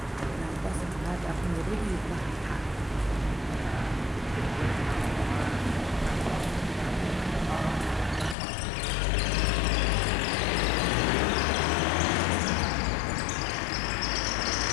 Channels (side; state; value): right; drops out; at 8.3 s